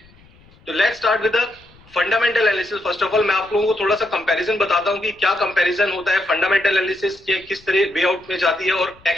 तो let's start with the fundamental analysis. First of all मैं आप लोगों को थोड़ा सा कंपैरिजन बताता हूं कि क्या कंपैरिजन होता है, फंडामेंटल एनालिसिस के किस तरह वे आउट में जाती है और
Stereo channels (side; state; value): left; noise; rumble, 28 dB below the sound